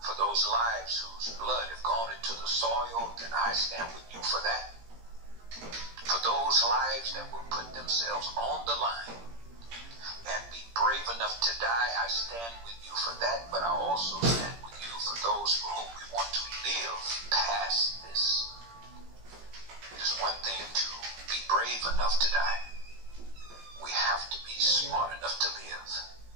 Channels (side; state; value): left; late; 17 ms